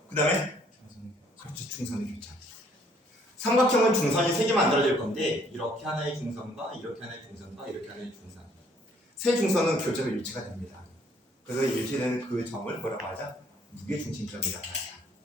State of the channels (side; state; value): both; normal; correlation 0.63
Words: 그 다음에 그렇죠. 중선의 교차. 삼각형은 중선이 세 개 만들어질 건데, 이렇게 하나의 중선과 이렇게 하나의 중선과 이렇게 하나의 중선, 세 중선은 교점의 일치가 됩니다. 그래서 일치되는 그 점을 뭐라고 하자? 무게중심점이라고 하자.